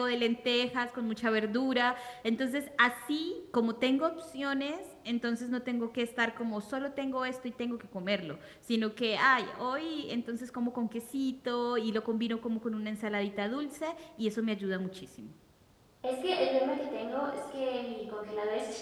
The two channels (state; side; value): identical; both; correlation 1.00